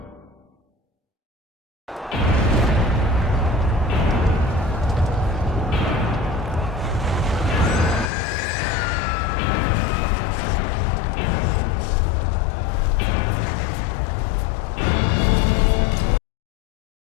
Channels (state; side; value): drops out; right; at 8.1 s